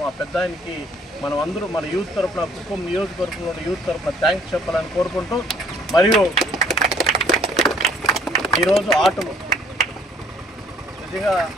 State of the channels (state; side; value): normal; both; correlation 0.60